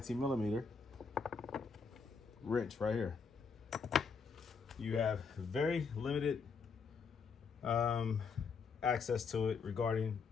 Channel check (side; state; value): right; quieter; 5.4 dB